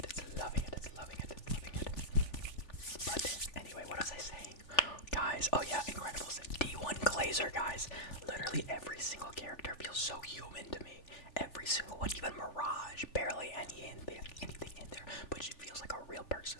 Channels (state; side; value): late; right; 3.4 ms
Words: It's loving it. It's loving it. It's loving it. But anyway, what was I saying? Guys, oh yeah, Incredibles. D1 Glazer, guys. Literally every single character feels so human to me. Every single one, even Mirage, barely anything in there, but she feels like a real person.